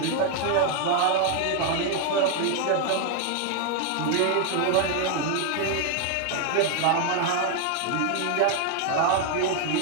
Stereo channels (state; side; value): different; both; correlation 0.01